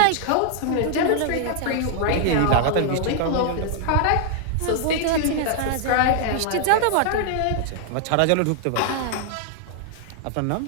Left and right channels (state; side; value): different; both; correlation -0.01